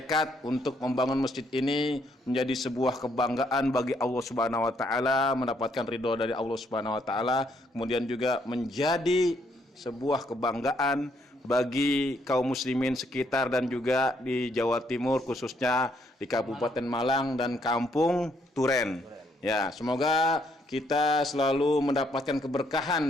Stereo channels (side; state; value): both; normal; correlation 0.71